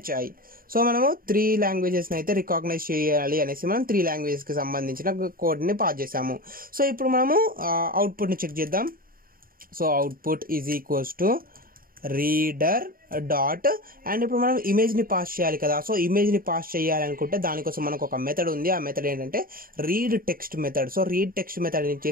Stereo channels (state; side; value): late; left; 0.42 ms